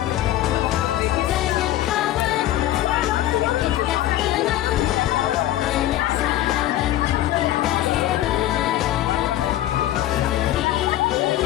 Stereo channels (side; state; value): right; quieter; 13.8 dB